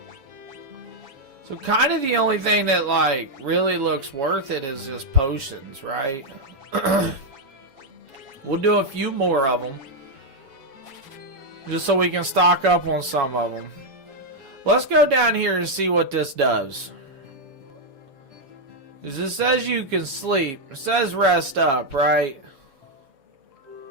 So kind of the only thing that like really looks worth it is just potions, right? We'll do a few more of them. Just so we can stock up on some of them. Let's go down here and see what this does. Because it says you can sleep. It says rest up, right?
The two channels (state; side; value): late; left; 7.2 ms